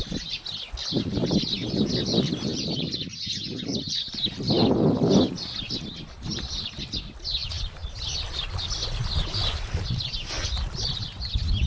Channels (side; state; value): both; identical; correlation 1.00